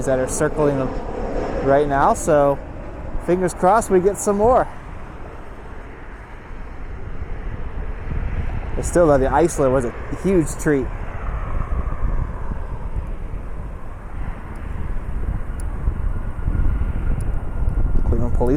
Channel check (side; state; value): both; identical; correlation 1.00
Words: that are circling right now. So fingers crossed we get some more. But still, though, the Icelandair was a huge treat. Cleveland